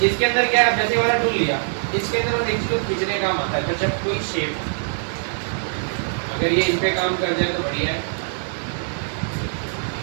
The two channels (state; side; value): silent; left; digital silence